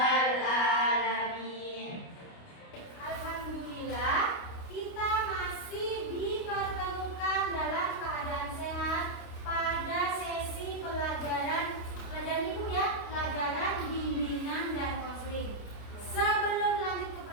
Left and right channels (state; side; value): late; right; 29 ms